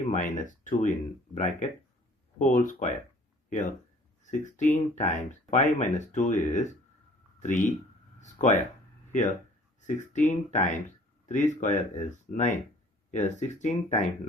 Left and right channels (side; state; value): both; normal; correlation 0.53